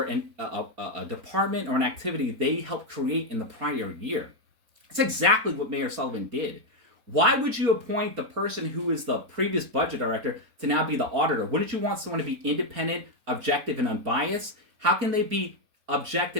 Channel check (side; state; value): left; late; 4.3 ms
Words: a department or an activity they helped create in the prior year. That's exactly what Mayor Sullivan did. Why would you appoint the person who is the previous budget director to now be the auditor? Wouldn't you want someone to be independent, objective, and unbiased? How can they be